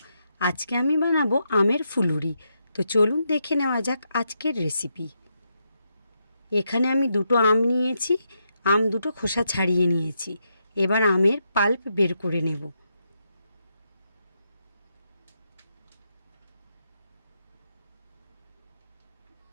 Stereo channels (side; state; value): both; inverted; correlation -0.82